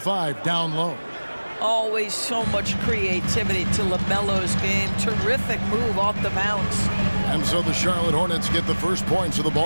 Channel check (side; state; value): both; inverted; correlation -1.00